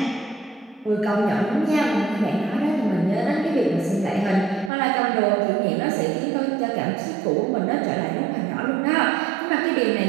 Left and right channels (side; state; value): left; drops out; at 4.7 s